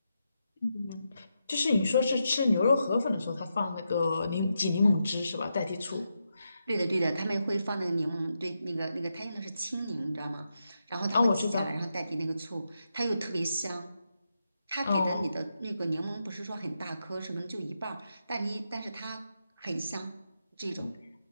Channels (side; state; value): both; inverted; correlation -0.85